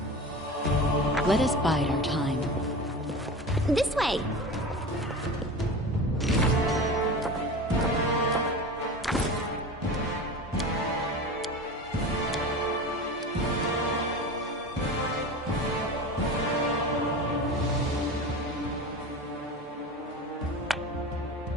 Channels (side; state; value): both; normal; correlation 0.31